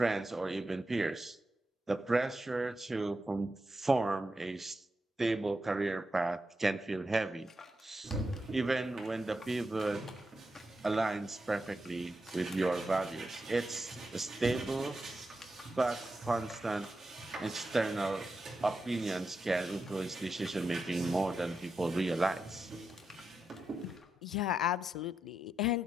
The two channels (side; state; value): both; normal; correlation 0.87